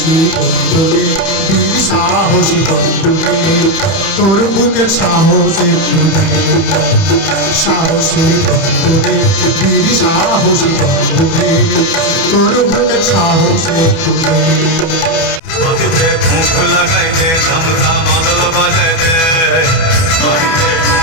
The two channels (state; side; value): late; right; 30 ms